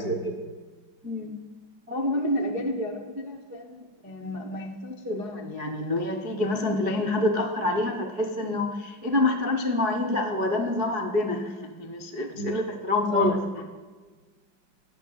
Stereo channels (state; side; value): late; left; 4.7 ms